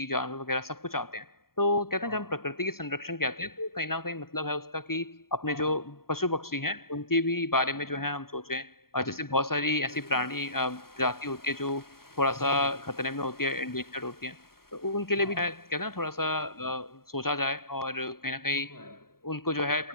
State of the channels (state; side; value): late; right; 0.93 ms